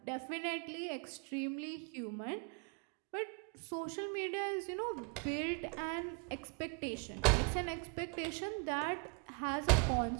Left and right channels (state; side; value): quieter; left; 32.5 dB